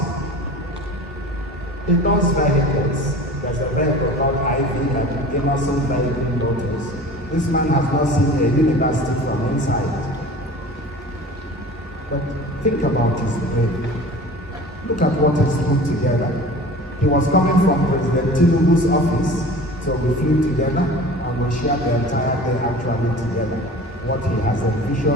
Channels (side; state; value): both; normal; correlation 0.40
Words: He does vehicles. There's a vehicle called IV, like Innocent Vehicle Motors. This man has not seen a university from inside. But think about his brain. Look at what he's put together. He was coming from President Enugu's office, so we flew together and we shared the entire day actually together. What he has